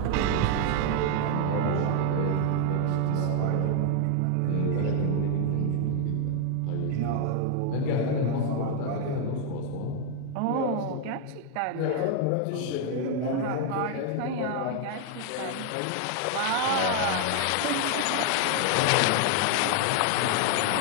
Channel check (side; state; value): both; different; correlation 0.00